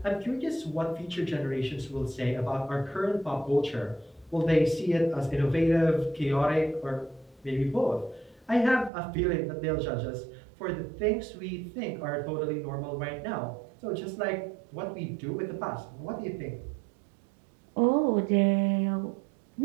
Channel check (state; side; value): drops out; left; at 8.9 s